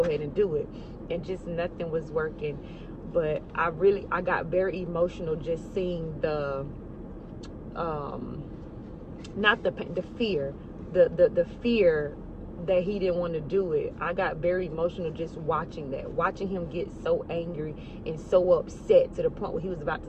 ahead and do it. And just nothing was working. But I got very emotional just seeing the, not the fear, the fear that he didn't want to do it. I got very emotional just watching him get so angry and so upset to the point where he was about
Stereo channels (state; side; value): identical; both; correlation 1.00